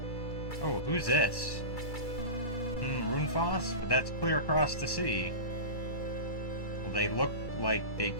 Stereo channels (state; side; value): late; right; 2.3 ms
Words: Oh, who's this? Ruinfast? But that's clear across the sea. Well, they look like they